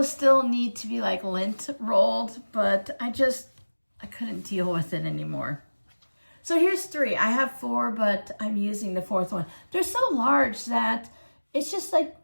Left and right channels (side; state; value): both; inverted; correlation -1.00